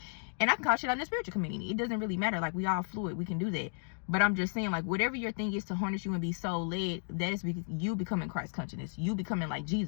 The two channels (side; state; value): right; silent; digital silence